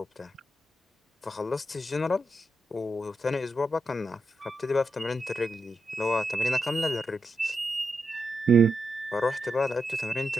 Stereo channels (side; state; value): both; normal; correlation 0.85